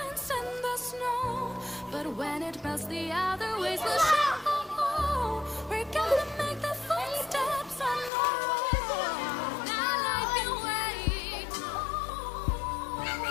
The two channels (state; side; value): drops out; right; at 8.1 s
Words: in the snow. But when it melts, the other ways will show. We're gonna make the footsteps on our own. Now life can wait